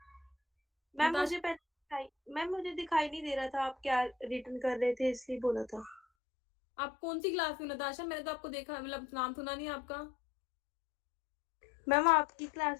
Ma'am Natasha- मुझे मैम मुझे दिखाई नहीं दे रहा था आप क्या रिटर्न कर रहे थे, इसलिए बोला था। आप कौन सी क्लास में नताशा? मैंने तो आपको देखा, मतलब नाम सुना नहीं आपका। मैम आपकी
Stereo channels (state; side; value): drops out; right; at 6.0 s